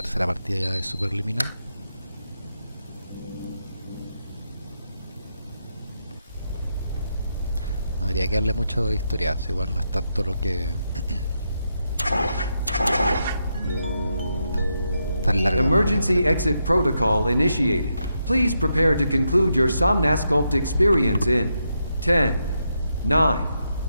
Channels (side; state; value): both; inverted; correlation -0.83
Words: partida ya de Superliminal. No habría que darle mucho de historia, igual no es tanto lo que... tan largo como lo que Emergency entiendo. exit protocol initiated. Please prepare to conclude your Somnasculpt experience in 10, 9,